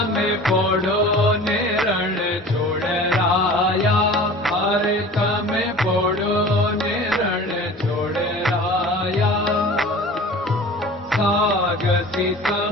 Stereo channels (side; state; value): both; normal; correlation 0.41